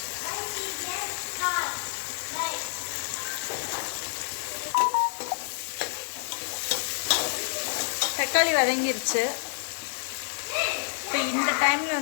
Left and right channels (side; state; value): right; silent; digital silence